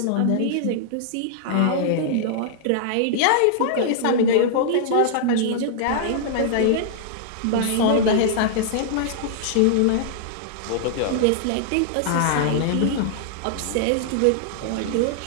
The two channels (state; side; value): different; both; correlation -0.01